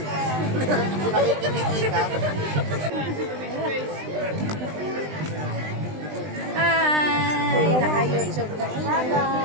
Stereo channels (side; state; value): left; late; 20 ms